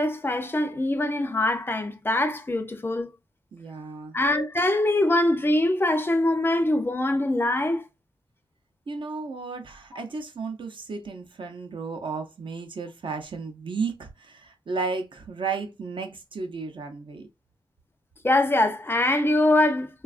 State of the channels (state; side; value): normal; both; correlation 0.76